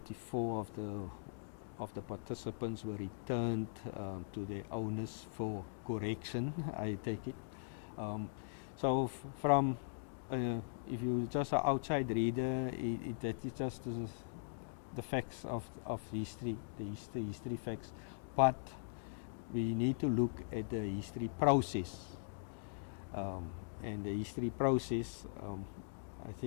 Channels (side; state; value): right; silent; digital silence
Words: of the participants were returned to their owners for correction, I take it. So from if you just an outside reader, that is just the facts of history, the history facts. But we need to look at the history process, and the history process. I